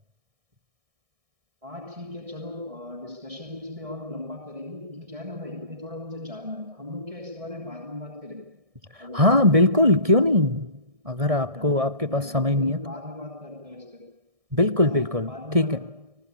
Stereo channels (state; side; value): late; left; 1.6 ms